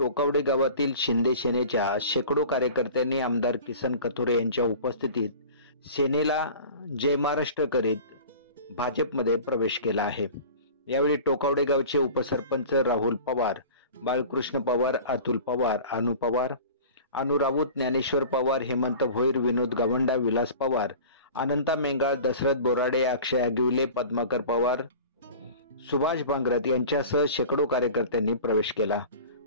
गावातील शिंदे सेनेच्या शेकडो कार्यकर्त्यांनी आमदार किसन कथोरे यांच्या उपस्थितीत सेनेला जय महाराष्ट्र करीत भाजपमध्ये प्रवेश केला आहे। यावेळी टोकावडे गावचे उपसरपंच राहुल पवार, बाळकृष्ण पवार, अतुल पवार, अनु पवार, अनु राऊत, ज्ञानेश्वर पवार, हेमंत भोईर, विनोद गावंडा, विलास पवार, अनंता मेंगाळ, दशरथ बोराडे, अक्षय अगिवले, पद्माकर पवार, सुभाष भांगरत यांच्यासह शेकडो कार्यकर्त्यांनी प्रवेश केला।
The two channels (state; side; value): inverted; both; correlation -0.40